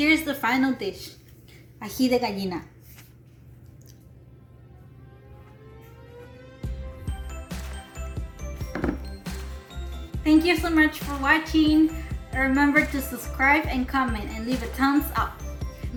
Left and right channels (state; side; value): identical; both; correlation 1.00